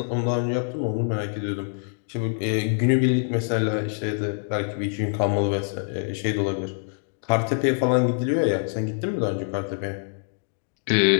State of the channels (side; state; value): right; silent; 62 dB below the other